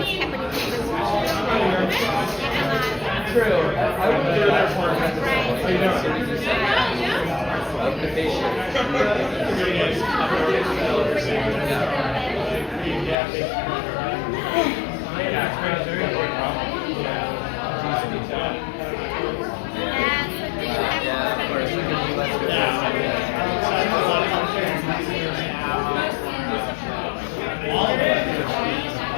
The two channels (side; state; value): right; drops out; at 13.2 s